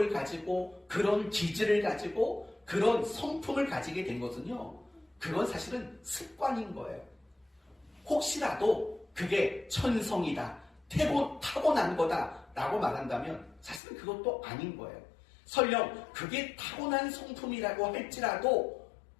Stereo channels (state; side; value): drops out; right; at 13.8 s